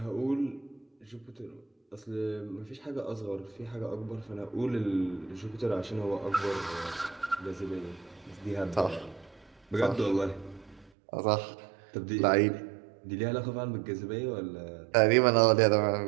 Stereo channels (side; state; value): left; drops out; at 10.9 s